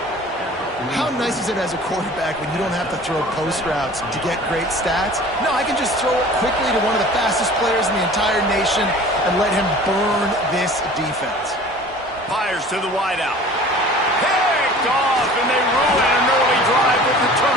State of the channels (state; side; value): normal; both; correlation 0.45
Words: How nice is it as a quarterback when you don't have to throw post routes to get great stats? No, I can just throw it quickly to one of the fastest players in the entire nation and let him burn this defense. Fires to the wideout. Picked off, and they ruin an early drive with the